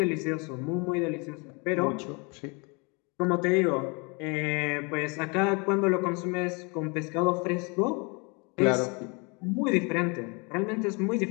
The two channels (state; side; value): quieter; right; 30.8 dB